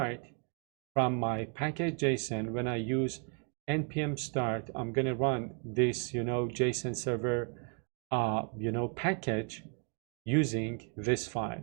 from my package.json, when I use npm start, I'm going to run this, JSON server, package using this file.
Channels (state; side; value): quieter; left; 38.1 dB